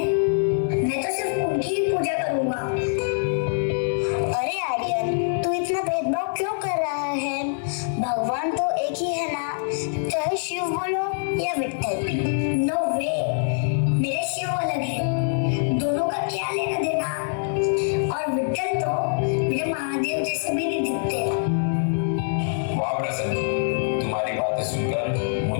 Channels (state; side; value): silent; right; 62 dB below the other